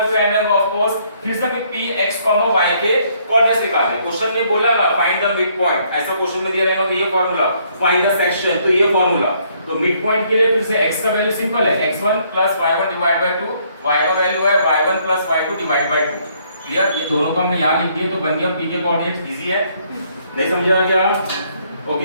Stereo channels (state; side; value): inverted; both; correlation -0.67